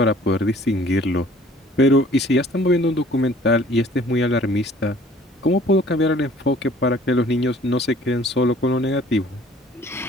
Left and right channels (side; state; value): both; normal; correlation 0.54